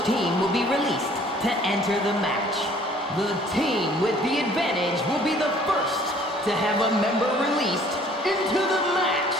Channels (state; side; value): normal; both; correlation 0.55